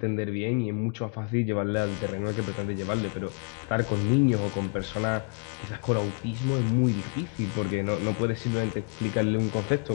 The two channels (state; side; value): quieter; right; 37.4 dB